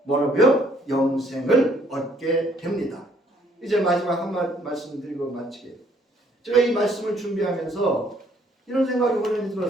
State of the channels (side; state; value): both; normal; correlation 0.64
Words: 뭐라고요? 영생을 얻게 됩니다. 이제 마지막 한 말씀드리고 마치게. 제가 이 말씀을 준비하면서 이런 생각이 오늘